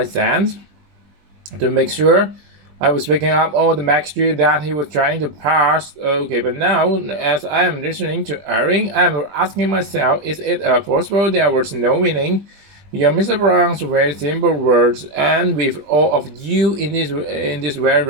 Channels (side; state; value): left; late; 20 ms